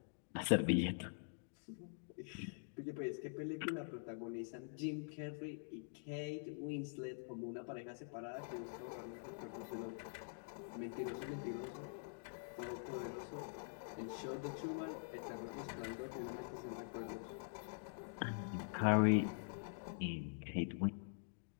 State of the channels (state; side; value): silent; right; digital silence